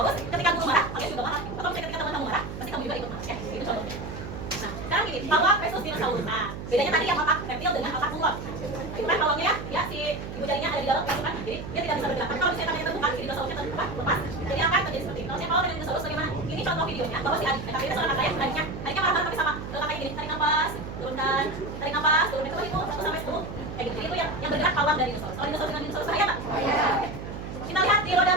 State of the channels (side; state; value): right; noise; hum, 8 dB below the sound